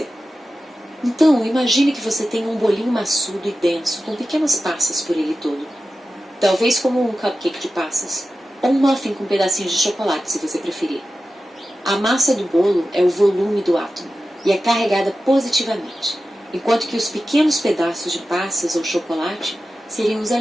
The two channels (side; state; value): both; normal; correlation 0.93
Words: Então, imagine que você tem um bolinho maçudo e denso, com pequenas passas por ele todo. Talvez como um cupcake de passas, ou um muffin com pedacinhos de chocolate, se você preferir. A massa do bolo é o volume do átomo e é carregada positivamente, enquanto que os pequenos pedaços de passas ou chocolate seriam os